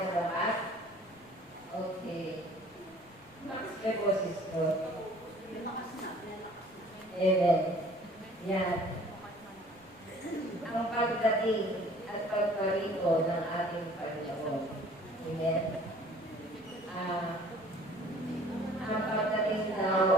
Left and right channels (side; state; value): left; noise; rumble, 27 dB below the sound